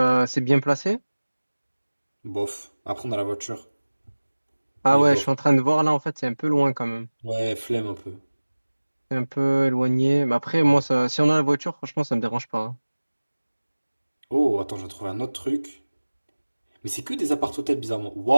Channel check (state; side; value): inverted; both; correlation -1.00